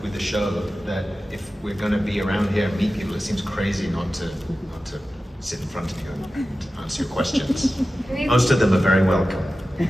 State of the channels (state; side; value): normal; both; correlation 0.94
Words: with the show that if we're going to be around here and meet people, it seems crazy not to sit in front of you and answer your questions. Most of them are very welcome.